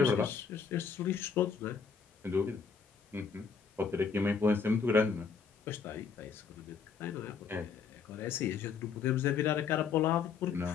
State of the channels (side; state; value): right; quieter; 5.9 dB